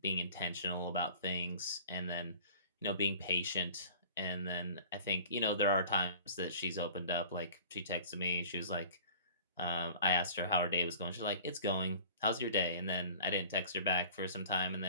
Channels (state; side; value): inverted; both; correlation -0.46